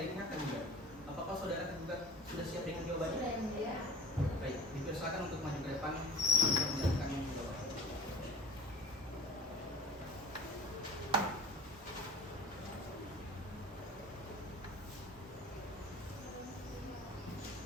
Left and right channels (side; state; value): both; normal; correlation 0.40